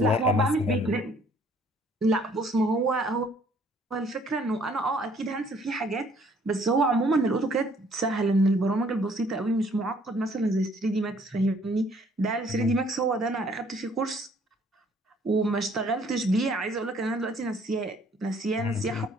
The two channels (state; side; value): normal; both; correlation 0.60